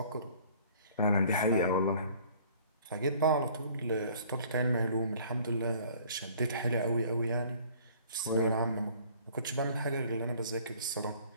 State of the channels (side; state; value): both; inverted; correlation -0.53